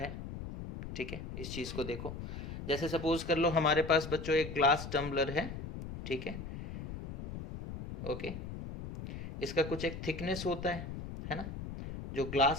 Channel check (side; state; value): left; noise; rumble, 8 dB below the sound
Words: ठीक है, इस चीज़ को देखो. जैसे सपोज कर लो हमारे पास बच्चों एक ग्लास टम्बलर है. ठीक है, ओके. इसका कुछ एक थिकनेस होता है ना. जो